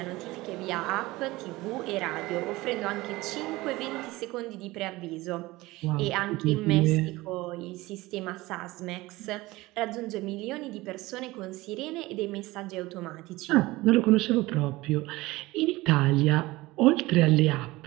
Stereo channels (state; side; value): quieter; left; 19.9 dB